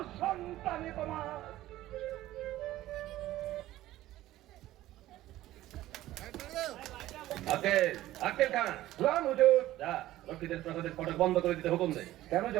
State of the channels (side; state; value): left; quieter; 15.2 dB